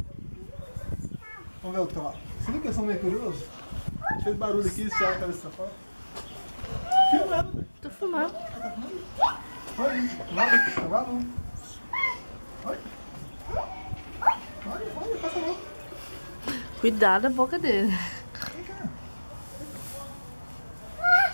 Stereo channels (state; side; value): inverted; both; correlation -1.00